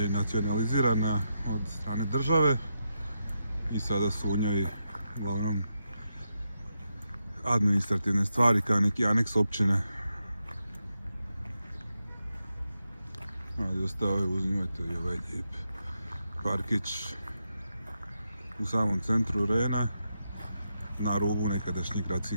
nacionalizirana od strane države i sada su u njoj uglavnom administrativne stvari kao neki aneks općine. Ali ostao je, uzimajte i ovaj lijep parkić u samom centru Rena, na rubu nekadašnjih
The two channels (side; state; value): both; inverted; correlation -0.85